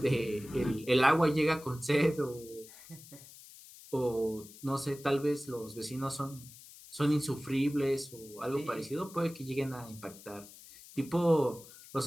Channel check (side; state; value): left; noise; hiss, 19 dB below the sound